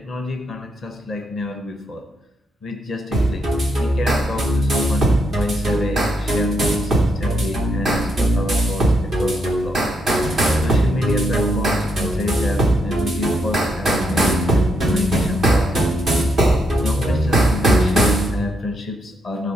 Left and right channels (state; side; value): normal; both; correlation 0.79